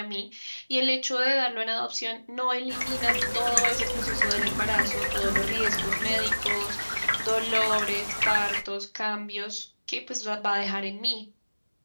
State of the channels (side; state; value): both; inverted; correlation -1.00